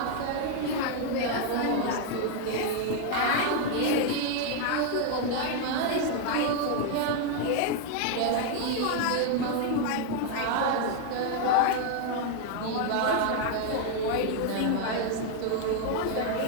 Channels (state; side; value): different; both; correlation 0.00